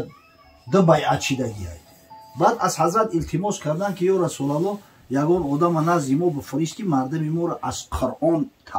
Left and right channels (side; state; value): both; identical; correlation 1.00